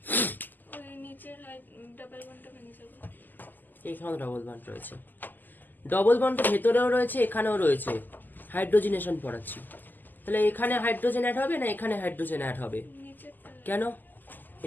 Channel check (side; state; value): right; late; 0.087 ms